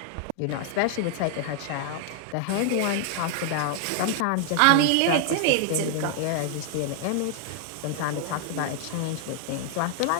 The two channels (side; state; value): both; different; correlation 0.00